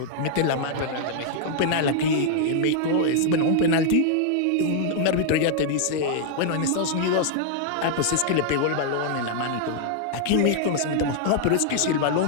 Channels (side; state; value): both; different; correlation 0.00